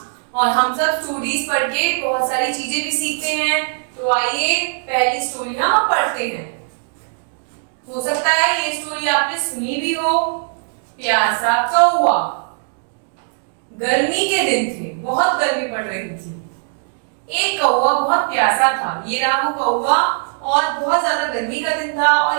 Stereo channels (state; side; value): silent; left; digital silence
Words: और हम सब स्टोरीज पढ़ के बहुत सारी चीजें भी सीखते हैं। तो आइए पहली स्टोरी हम पढ़ते हैं। हो सकता है ये स्टोरी आपने सुनी भी हो। प्यासा कौवा। गर्मी के दिन थे, बहुत गर्मी पड़ रही थी। एक कौवा बहुत प्यासा था। ये रहा वो कौवा, और बहुत ज्यादा गर्मी का दिन था